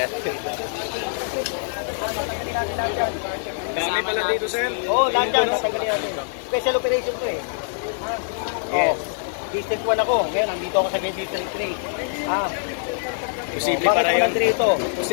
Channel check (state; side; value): silent; right; digital silence